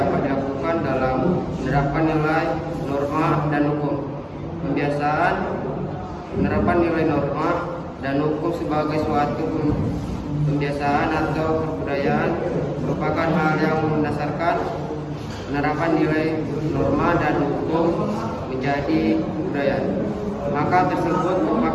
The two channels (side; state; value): both; identical; correlation 1.00